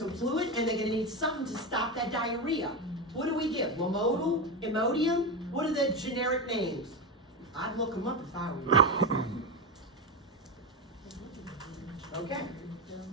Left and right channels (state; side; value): normal; both; correlation 0.15